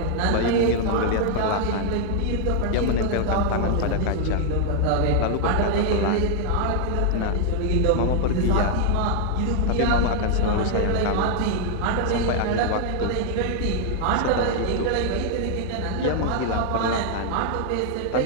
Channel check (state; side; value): different; both; correlation 0.00